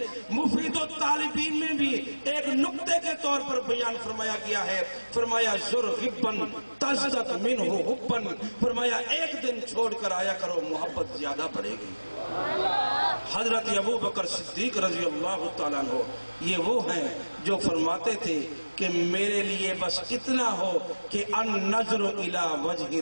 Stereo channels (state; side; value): inverted; both; correlation -1.00